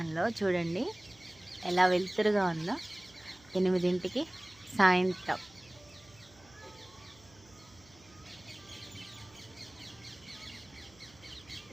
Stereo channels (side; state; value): right; noise; hum, 26 dB below the sound